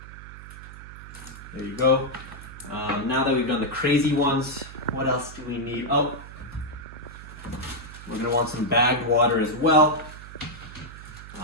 There you go. Now that we've done the crazy ones, what else do we need? Oh, we're going to want some bagged water as well.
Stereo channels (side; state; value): right; noise; hum, 15 dB below the sound